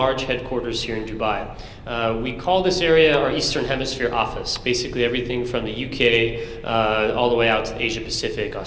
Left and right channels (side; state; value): both; identical; correlation 1.00